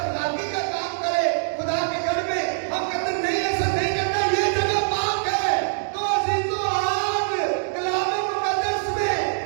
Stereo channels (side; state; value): left; silent; 63 dB below the other